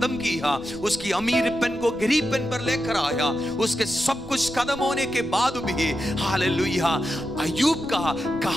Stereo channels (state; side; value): noise; left; rumble, 19 dB below the sound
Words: किया, उसकी अमीरपन को गरीबपन पर लेकर आया, उसके सब कुछ खत्म होने के बाद भी हालेलुया अय्यूब का